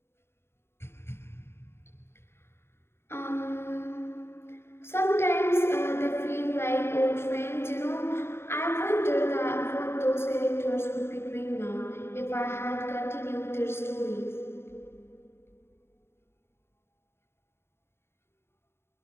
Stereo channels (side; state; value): right; late; 0.12 ms